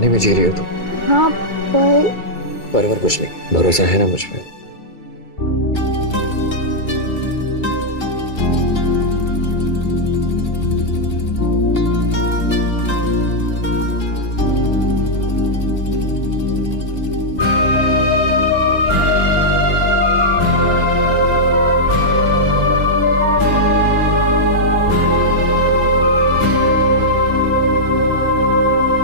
में जी रही हो तुम? हाँ पर कुछ नहीं, भरोसा है ना मुझ पे?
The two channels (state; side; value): late; right; 2.3 ms